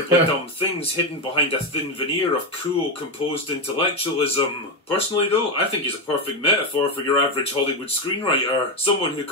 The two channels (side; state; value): both; normal; correlation 0.10